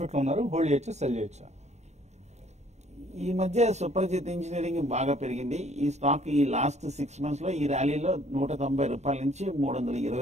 ఉన్నారు, హోల్డ్ చేయొచ్చు, సెల్ చేయొచ్చా? ఈ మధ్య సుప్రజిత్ ఇంజనీరింగ్ బాగా పెరిగింది. ఈ స్టాక్ ఈ లాస్ట్ 6 months లో ఈ ర్యాలీలో 190 రూపాయల నుంచి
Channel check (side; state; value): left; late; 0.32 ms